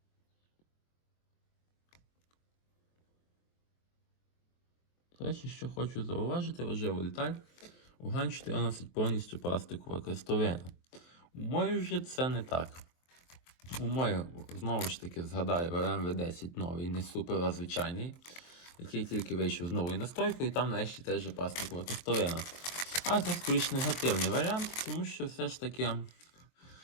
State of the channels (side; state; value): right; late; 23 ms